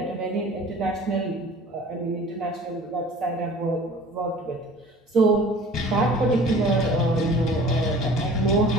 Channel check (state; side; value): normal; both; correlation 0.46